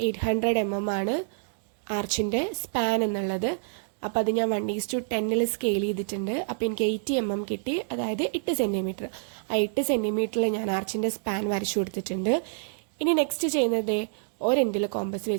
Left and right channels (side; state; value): left; silent; digital silence